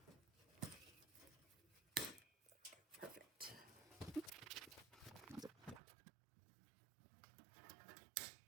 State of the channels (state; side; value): drops out; left; at 5.8 s